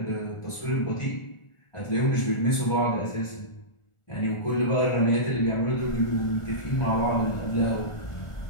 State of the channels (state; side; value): late; right; 1.4 ms